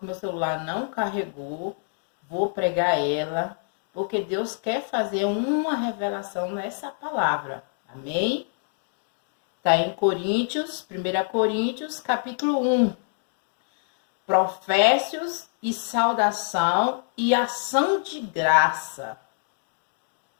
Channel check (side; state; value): right; silent; digital silence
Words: meu celular não carregou. Vou pregar ela, porque Deus quer fazer uma revelação nessa palavra. Amém? Está em Coríntios, 1 Coríntios, capítulo 1. Profécios e saudação e ação de graça.